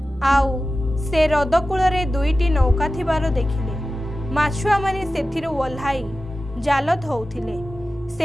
ଆଉ ସେ ହ୍ରଦ କୂଳରେ 2ଟି ନୌକା ଥିବାର ଦେଖିଲେ। ମାଛୁଆମାନେ ସେଥିରୁ ଓହ୍ଲାଇ ଜାଲ ଧଉଥିଲେ।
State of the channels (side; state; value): both; normal; correlation 0.94